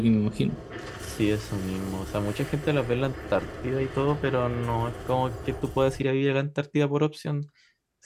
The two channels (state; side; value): identical; both; correlation 1.00